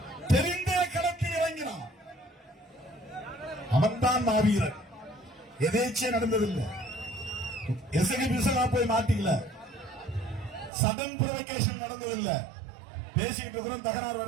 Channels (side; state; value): left; drops out; at 10.7 s